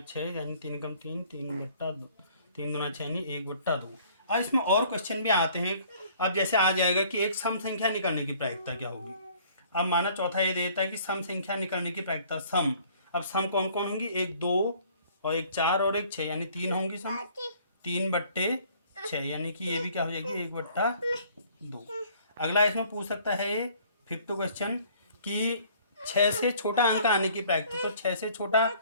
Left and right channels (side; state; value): both; inverted; correlation -0.57